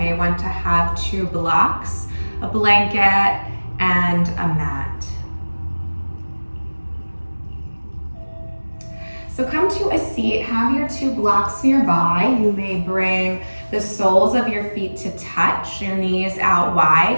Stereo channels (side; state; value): both; inverted; correlation -1.00